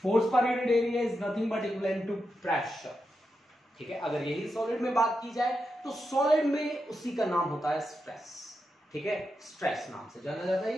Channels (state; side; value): normal; both; correlation 0.87